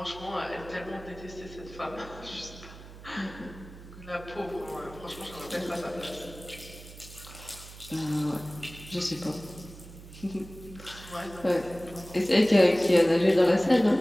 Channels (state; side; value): noise; right; hum, 16 dB below the sound